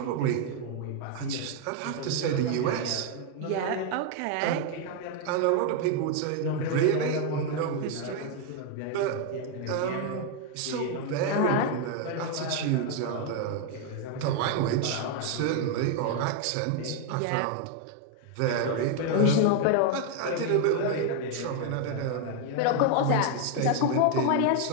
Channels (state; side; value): different; both; correlation 0.00